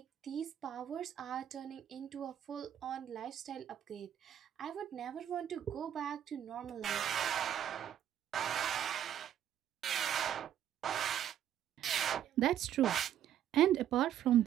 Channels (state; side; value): quieter; left; 10.5 dB